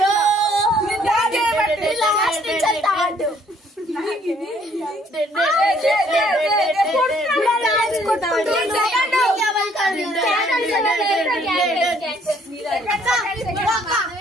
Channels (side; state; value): both; normal; correlation 0.63